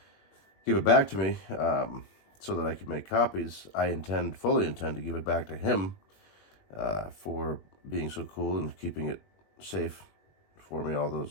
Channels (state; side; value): late; right; 21 ms